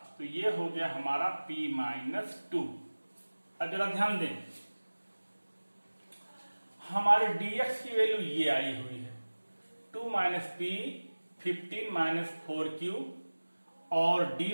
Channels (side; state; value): both; inverted; correlation -1.00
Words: तो ये हो गया हमारा p माइनस 2। अब जरा ध्यान दें, हमारे dx की वैल्यू ये आई हुई है 2 माइनस p 15 माइनस 4q और dy